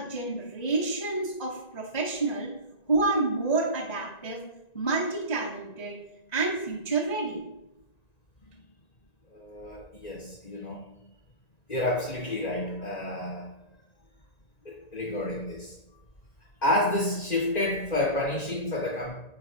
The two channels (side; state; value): right; late; 1.9 ms